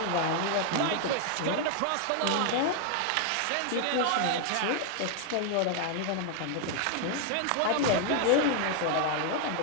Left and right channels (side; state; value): both; different; correlation 0.00